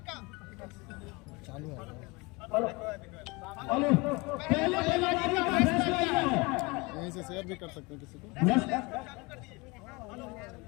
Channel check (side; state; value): right; quieter; 26.1 dB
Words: का चालू है पहले बल्लेबाजी का फैसला लिया है। यहीं से शेयर भी कर सकते हैं किसी को।